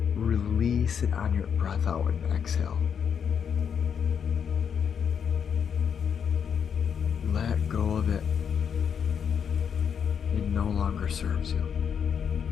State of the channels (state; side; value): quieter; right; 7.4 dB